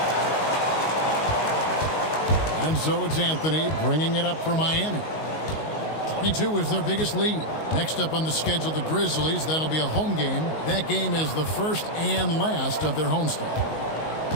And so it's Anthony bringing it up for Miami. 22 is their biggest lead. Next up on the schedule, the Grizzlies. That'll be a home game. That game is the first and last of their homestand.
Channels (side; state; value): right; late; 19 ms